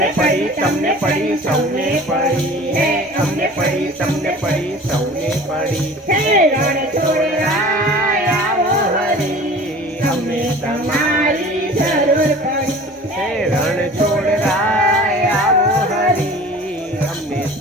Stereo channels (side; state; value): both; normal; correlation 0.43